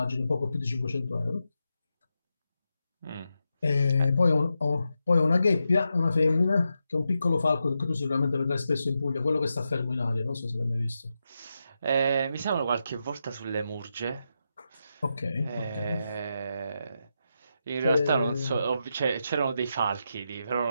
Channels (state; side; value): inverted; both; correlation -0.87